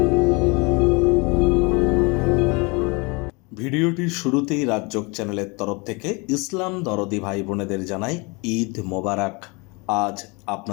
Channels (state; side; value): quieter; right; 28.4 dB